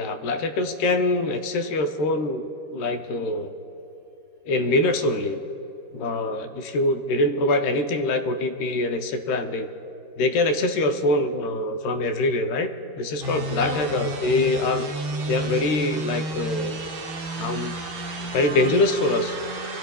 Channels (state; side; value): late; right; 13 ms